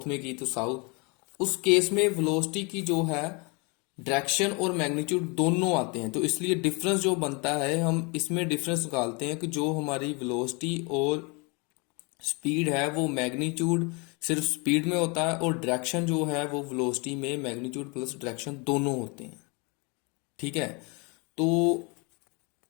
में की तो साउथ, उस केस में वेलोसिटी की जो है डायरेक्शन और मैग्नीट्यूड दोनों आते हैं। तो इसलिए डिफरेंस जो बनता है हम इसमें डिफरेंस निकालते हैं कि जो हमारी वेलोसिटी और स्पीड है वो मैग्नीट्यूड सिर्फ स्पीड में होता है और डायरेक्शन जो है वो वेलोसिटी में मैग्नीट्यूड प्लस डायरेक्शन दोनों होते हैं। ठीक है, तो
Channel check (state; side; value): quieter; right; 30.5 dB